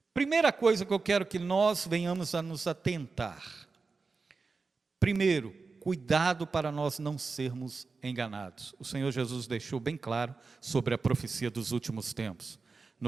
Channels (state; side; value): quieter; left; 4.3 dB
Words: Primeira coisa que eu quero que nós venhamos a nos atentar. Primeiro, cuidado para nós não sermos enganados. O Senhor Jesus deixou bem claro sobre a profecia dos últimos tempos.